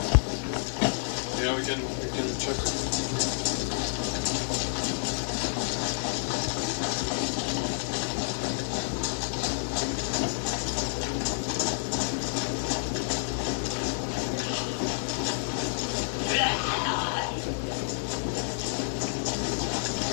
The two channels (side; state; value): right; silent; 58 dB below the other